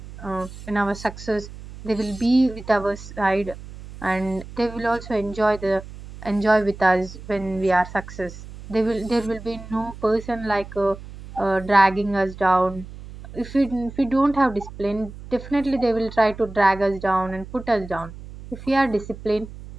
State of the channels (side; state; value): right; noise; hum, 14 dB below the sound